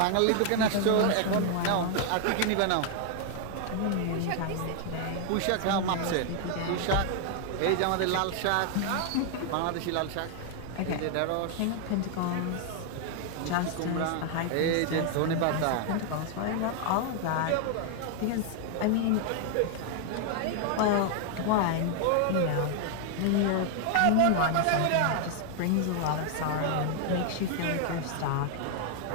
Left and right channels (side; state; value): both; different; correlation 0.00